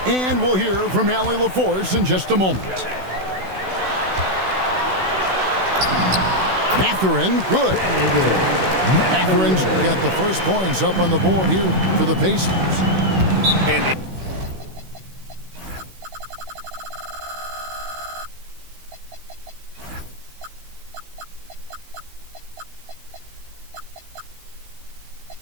And we'll hear from Allie LaForce in just a moment. Mathurin, good. Mathurin's got the first points up on the board here for the Pacers. And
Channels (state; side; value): late; left; 16 ms